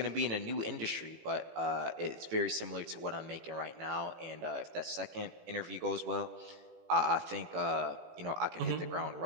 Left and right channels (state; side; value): late; left; 18 ms